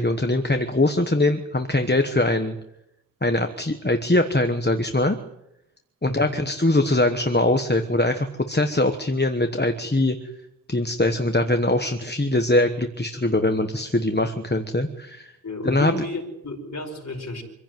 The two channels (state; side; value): normal; both; correlation 0.42